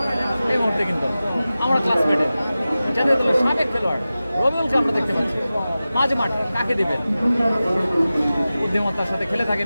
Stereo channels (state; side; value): inverted; both; correlation -0.95